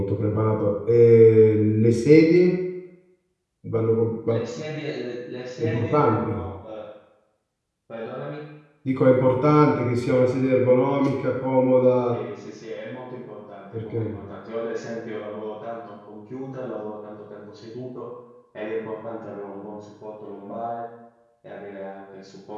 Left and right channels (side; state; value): both; identical; correlation 1.00